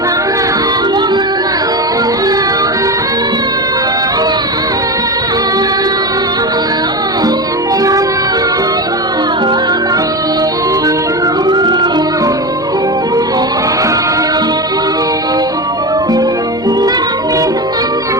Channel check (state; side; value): normal; both; correlation 0.20